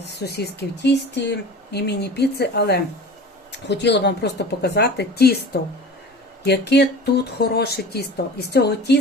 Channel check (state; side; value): normal; both; correlation 0.38